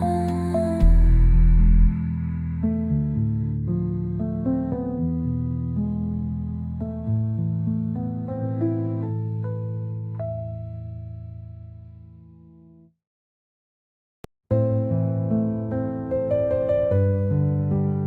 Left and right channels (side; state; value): both; identical; correlation 1.00